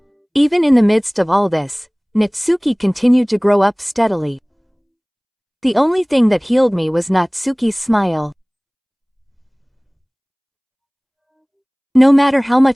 Even in the midst of all this, Natsuki continued to grow up steadily. The only thing that healed me was Natsuki's smile. No matter how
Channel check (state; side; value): identical; both; correlation 1.00